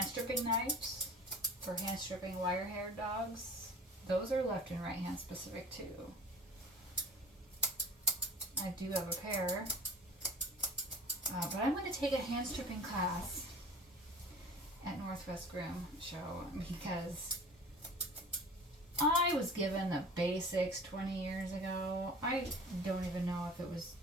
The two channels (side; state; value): both; normal; correlation 0.41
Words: stripping knives for hand stripping wire-haired dogs. Those are left and right hand specific too. I do have a pair. But I'm going to take a hand stripping class at Northwest Groom Show because I was given the basics 20 years ago. I don't even know if it was